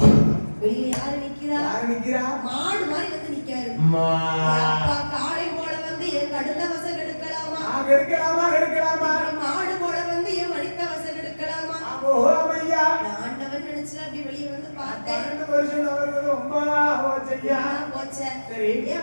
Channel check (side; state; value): both; inverted; correlation -1.00